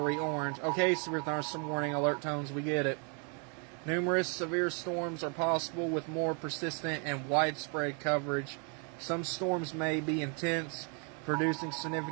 orange. Okay, severe thunderstorm warning, alert tones, we get it. Numerous severe storms are possible with more persistent and widespread coverage. Some storms may be intense, producing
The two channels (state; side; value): quieter; left; 38.1 dB